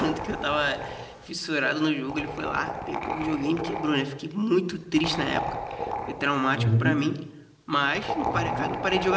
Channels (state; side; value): identical; both; correlation 1.00